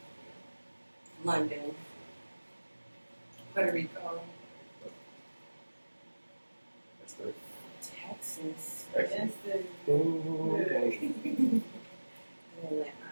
London, Puerto Rico, That's good. Texas, Excellent. That's the. Ooh. and Atlanta.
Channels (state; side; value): inverted; both; correlation -1.00